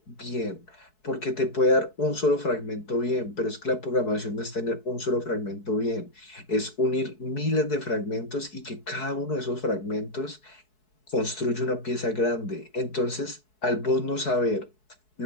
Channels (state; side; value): late; right; 4.7 ms